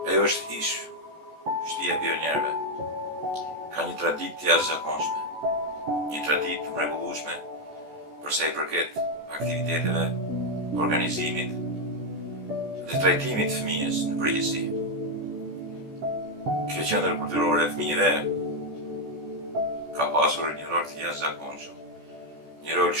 Ajo është ish shtëpia e pionierëve. Ka një traditë të jashtëzakonshme, një traditë të mrekullueshme për sa I përket aktiviteteve, organizimit dhe trajtimit të fëmijës në përgjithësi. Kjo qendër kulturore e fëmijëve ka pasur një rol të jashtëzakonshëm, një rol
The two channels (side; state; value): left; late; 14 ms